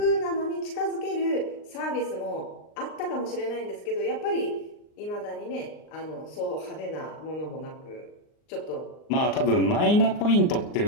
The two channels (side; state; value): right; late; 39 ms